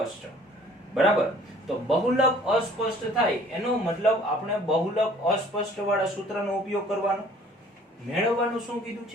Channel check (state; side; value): normal; both; correlation 0.54